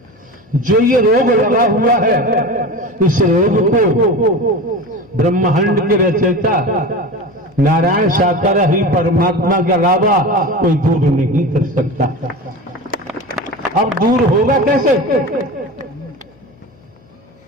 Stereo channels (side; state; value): left; noise; hum, 29 dB below the sound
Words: जो ये रोग लगा हुआ है, इस रोग को ब्रह्मांड के रचयिता नारायण साकार ही परमात्मा के अलावा कोई दूर नहीं कर सकता। अब दूर होगा कैसे?